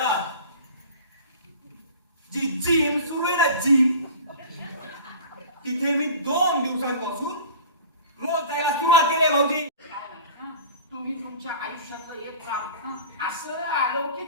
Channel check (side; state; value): both; inverted; correlation -0.40